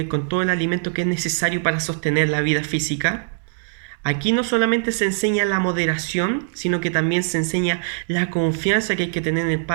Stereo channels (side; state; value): left; silent; digital silence